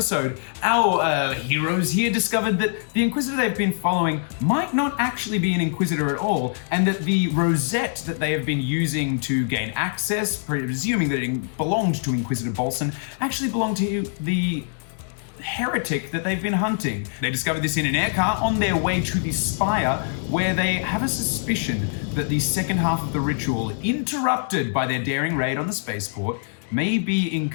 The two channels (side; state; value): right; silent; digital silence